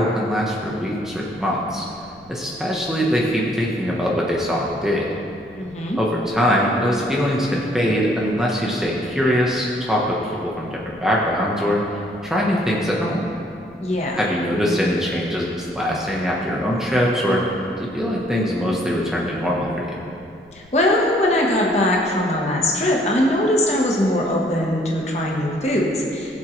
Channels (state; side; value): noise; left; rumble, 29 dB below the sound